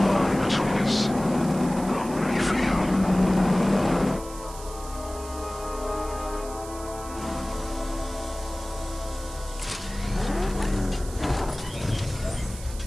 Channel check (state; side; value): noise; right; hiss, 15 dB below the sound